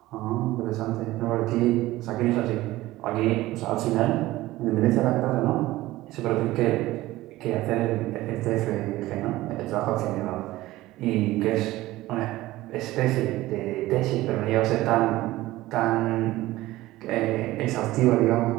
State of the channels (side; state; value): left; quieter; 17.3 dB